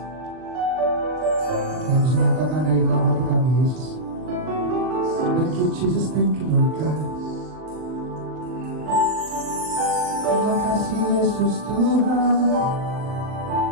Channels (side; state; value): left; late; 39 ms